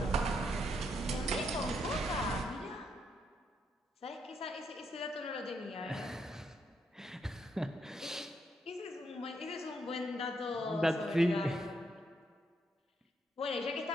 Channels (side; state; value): both; normal; correlation 0.77